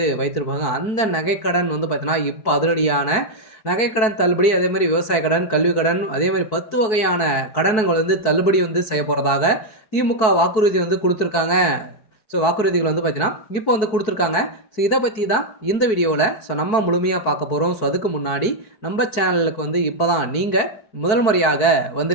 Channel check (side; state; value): right; late; 4.6 ms